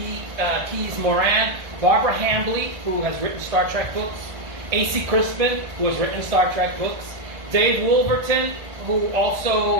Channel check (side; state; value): left; late; 1.6 ms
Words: Moran, Barbara Hambly, who has written Star Trek books, A.C. Crispin, who has written Star Trek books, Dave Wolverton, who